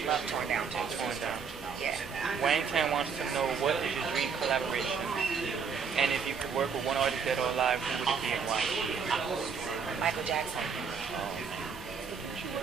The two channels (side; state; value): left; quieter; 6.0 dB